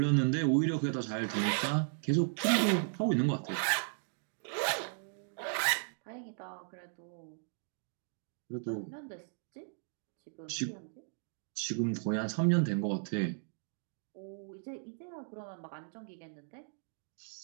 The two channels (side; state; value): left; silent; digital silence